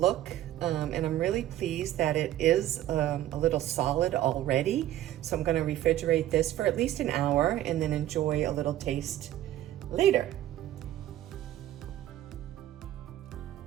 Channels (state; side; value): quieter; left; 13.4 dB